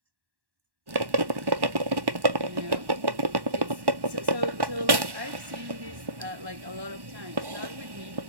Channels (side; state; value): left; late; 1.1 ms